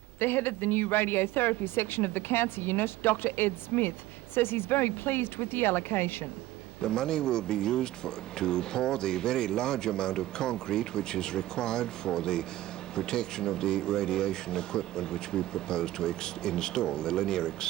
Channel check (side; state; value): left; quieter; 15.6 dB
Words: The head of the new radiotherapy section of the cancer unit, Dr Ed Smith, says he's very pleased with the allocation. The money will be used to pour the very large amount of concrete which is required for the protection of the radiation equipment which we propose to install, the linear